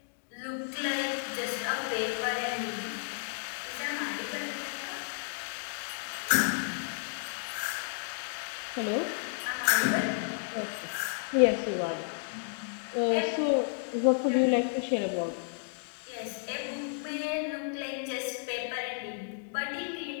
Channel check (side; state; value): right; silent; digital silence